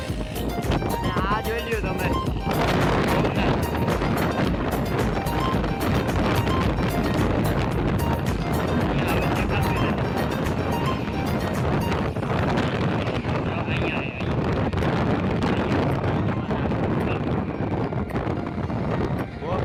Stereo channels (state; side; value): identical; both; correlation 1.00